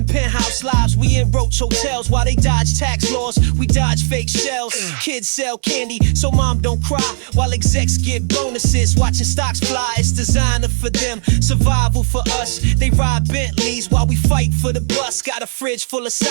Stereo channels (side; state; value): left; silent; 68 dB below the other